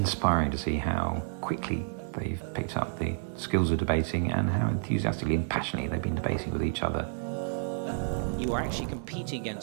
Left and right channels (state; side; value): silent; left; digital silence